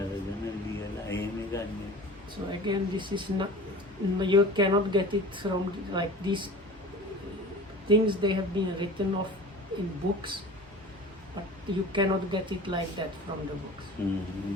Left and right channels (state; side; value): normal; both; correlation 0.39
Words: So again, this is not, you cannot get it from like these things, they have been written off in books, but you cannot get it like that from the books.